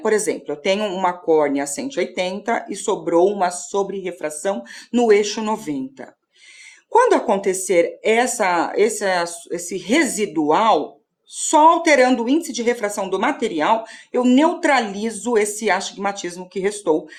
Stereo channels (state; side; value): identical; both; correlation 1.00